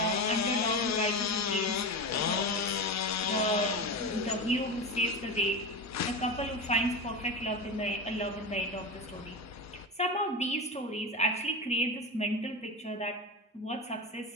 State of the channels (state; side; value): normal; both; correlation 0.22